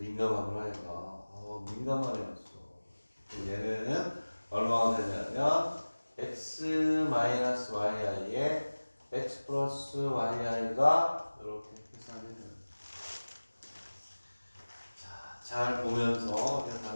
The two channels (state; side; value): inverted; both; correlation -1.00